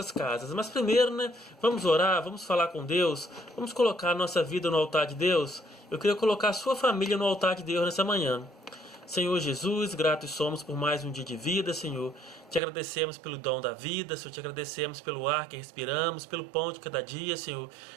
casas. Mas primeiro, né, vamos orar, vamos falar com Deus, vamos colocar a nossa vida no altar de Deus. Eu queria colocar a sua família no altar de Deus nessa manhã. Senhor Jesus, gratos somos por mais um dia de vida, Senhor. Te agradecemos pelo dom da vida, Senhor. Te agradecemos pelo ar que respiramos, pelo pão de cada dia, Senhor.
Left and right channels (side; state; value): left; drops out; at 12.6 s